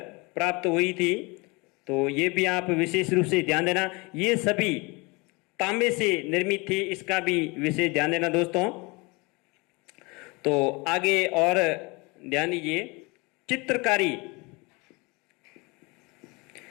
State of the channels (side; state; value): right; quieter; 26.8 dB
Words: प्राप्त हुई थी। तो ये भी आप विशेष रूप से ध्यान देना, ये सभी तांबे से निर्मित थी। इसका भी विशेष ध्यान देना दोस्तों। तो आगे और ध्यान दीजिए, चित्रकारी